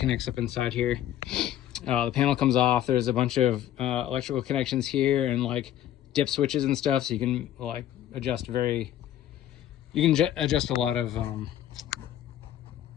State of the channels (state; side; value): quieter; right; 11.9 dB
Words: up inside here. The panel comes off. There's a bunch of electrical connections here and like dip switches and stuff, so you can like adjust a lot of